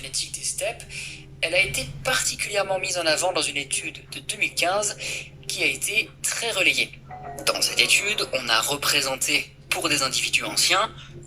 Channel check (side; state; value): both; identical; correlation 1.00